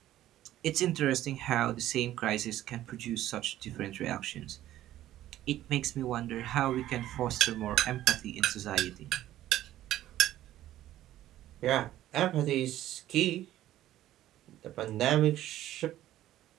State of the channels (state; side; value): quieter; left; 13.6 dB